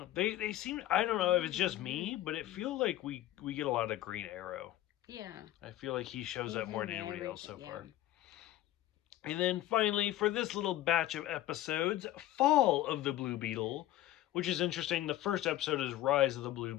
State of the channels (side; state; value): right; quieter; 14.4 dB